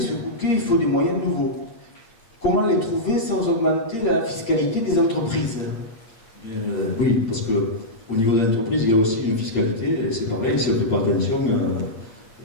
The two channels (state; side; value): late; right; 8.7 ms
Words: Bouquet, il faut des moyens nouveaux. Comment les trouver sans augmenter la fiscalité des entreprises? Oui, parce qu'au niveau de l'entreprise, il y a aussi une fiscalité, et c'est pareil, si on ne fait pas attention,